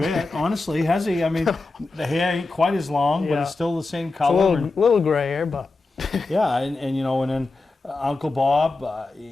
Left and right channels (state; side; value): quieter; right; 3.4 dB